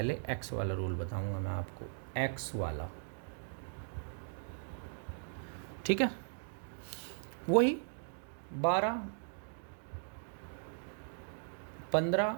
एक्स वाला रूल बताऊंगा मैं आपको, एक्स वाला, ठीक है। वही 12, 15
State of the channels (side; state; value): left; silent; digital silence